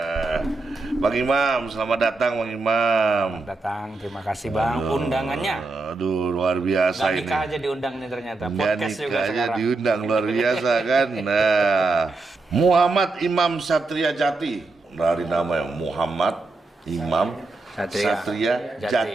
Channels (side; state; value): left; quieter; 3.4 dB